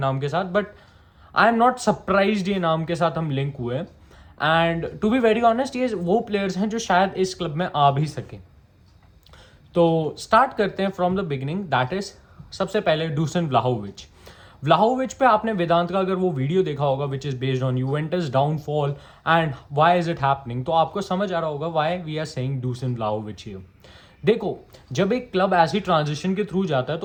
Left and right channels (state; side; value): identical; both; correlation 1.00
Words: के साथ, but I am not surprised ये नाम के साथ हम लिंक हुए. And to be very honest ये वो प्लेयर्स हैं जो शायद इस क्लब में आ भी सके. तो स्टार्ट करते हैं from the beginning. That is सबसे पहले डूसन व्लाहोविच. व्लाहोविच पे आपने वेदांत का अगर वो वीडियो देखा होगा which is based on Juventus downfall and why is it happening, तो आपको समझ आ रहा होगा why we are saying Dusan Vlahovic here. देखो, जब एक क्लब ऐसी ट्रांजिशन के थ्रू जाता है